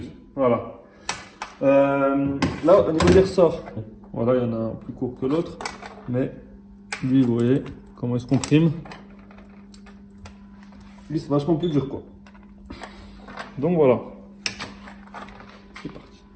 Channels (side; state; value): both; identical; correlation 1.00